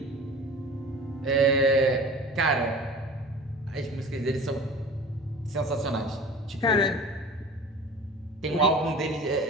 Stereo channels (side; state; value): both; normal; correlation 0.40